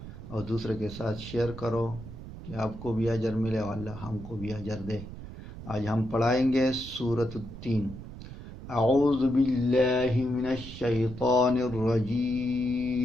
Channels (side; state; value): right; noise; rumble, 12 dB below the sound